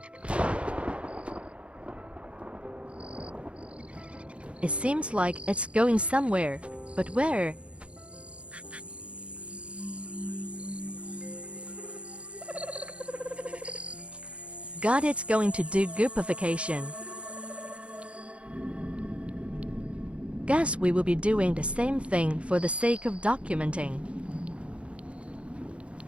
It seems like it's going somewhere, but where? God, it's going to do Goopification. Guess we will be doing the same thing for the sake of documenting.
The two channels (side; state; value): left; late; 0.060 ms